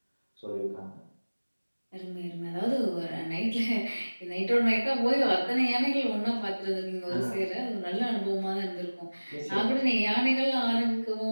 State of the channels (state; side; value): inverted; both; correlation -1.00